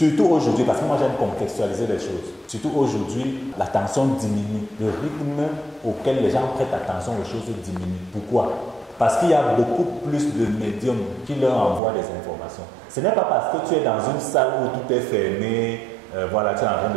aujourd'hui, parce que moi j'aime contextualiser les choses, surtout aujourd'hui, l'attention diminue. Le rythme auquel les gens prêtent attention aux choses diminue. Pourquoi? Parce qu'il y a beaucoup plus de médiums qui leur envoient des informations. Ce n'est pas parce que tu es dans une salle où tout est fermé, voilà, tu es en train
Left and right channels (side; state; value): left; drops out; at 11.8 s